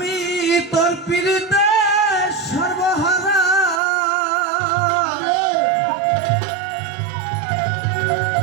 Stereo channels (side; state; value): left; drops out; at 3.8 s